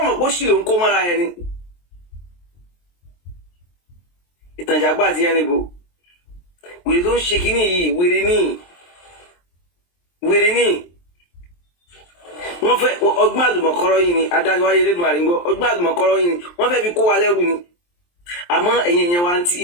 pé ó sì ló ń kó mọ́ra ẹni ìtànjàgbá àti yẹn níbo wèrè tó ń ṣe kínní yìí wèrè ní wọ́n fẹ́ ọgbọ́n àlùmọ̀kọ́rọ́ yìí ni adájọ́ wáyé lẹ́dùn àrígbọ́ ọgbọ́n àlùmọ̀kọ́rọ́ yìí ni wọ́n fẹ́ fi kó wa lẹ́rù ni àmọ́ ẹ̀yin èèyàn wa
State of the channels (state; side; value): late; right; 23 ms